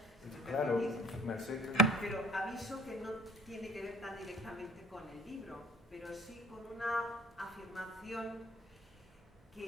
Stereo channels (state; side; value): normal; both; correlation 0.51